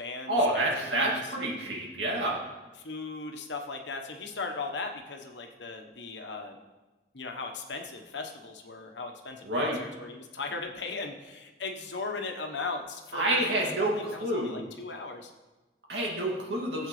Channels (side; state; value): both; normal; correlation 0.07